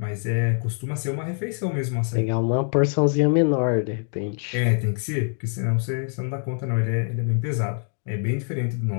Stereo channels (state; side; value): silent; right; 55 dB below the other